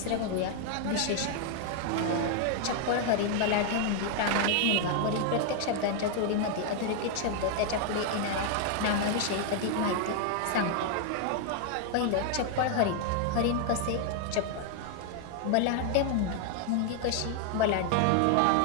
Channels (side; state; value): both; different; correlation 0.00